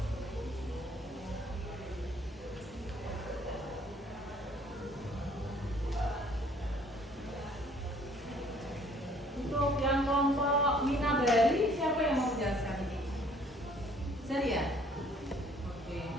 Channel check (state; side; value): normal; both; correlation 0.59